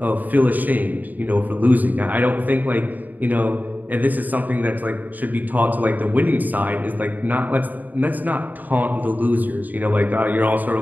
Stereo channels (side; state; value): left; late; 0.083 ms